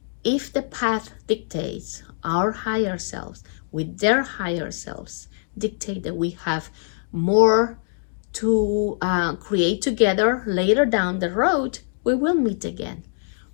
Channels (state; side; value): silent; right; digital silence